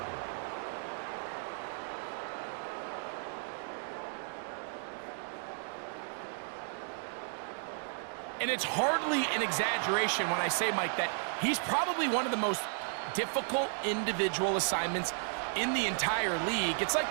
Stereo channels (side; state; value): left; silent; 55 dB below the other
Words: And it's hardly an exaggeration when I say, Mike, that he's probably one of the most difficult individual assignments in the entire league. It's like